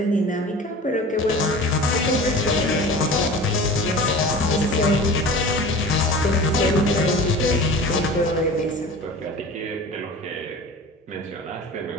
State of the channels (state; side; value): normal; both; correlation 0.37